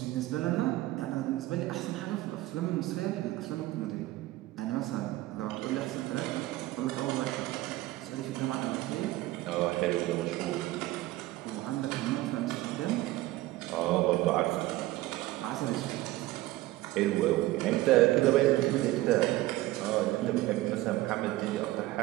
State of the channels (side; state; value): left; quieter; 17.3 dB